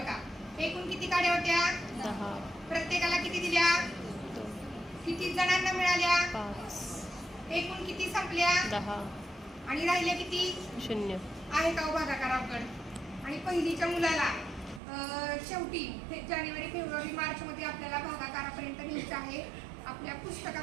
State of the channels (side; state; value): left; drops out; at 14.8 s